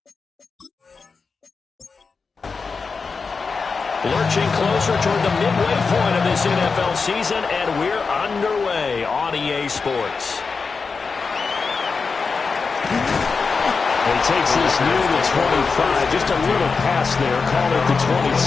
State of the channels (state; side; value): quieter; right; 4.8 dB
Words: Lurching closer toward the midway point of this NFL season, and we're underway on EA Sports. He takes this near the 25, just a little pass there, call it the